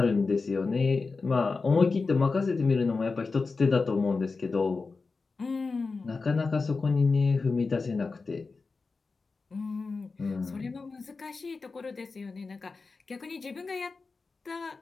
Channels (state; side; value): quieter; right; 4.2 dB